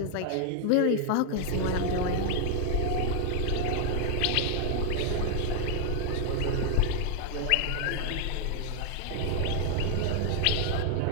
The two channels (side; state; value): both; different; correlation 0.00